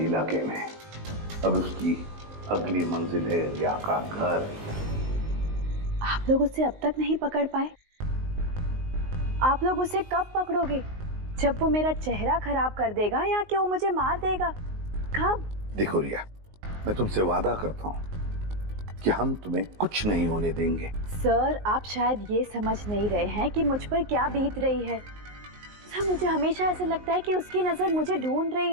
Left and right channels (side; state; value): left; late; 19 ms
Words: में। अब उसकी अगली मंजिल है रिया का घर। आप लोग उसे अब तक नहीं पकड़ पाए? आप लोग उसे कब पकड़ोगे? जब वो मेरा चेहरा खराब कर देगा या कि वो मुझे मार देगा? कब? देखो रिया, मैं तुमसे वादा करता हूं कि हम तुम्हें कुछ नहीं होने देंगे। सर, आप शायद ये समझ नहीं रहे हैं कि मुझ पर क्या बीत रही है। सर, मुझे हमेशा ऐसे लगता है कि उसकी नजर मुझे ढूंढ रही